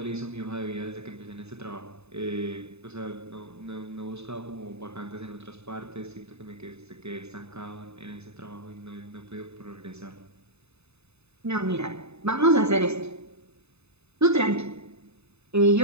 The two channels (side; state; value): left; late; 0.80 ms